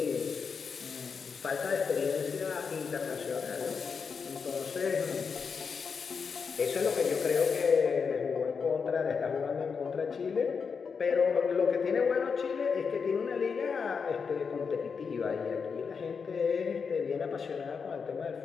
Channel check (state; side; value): quieter; right; 5.7 dB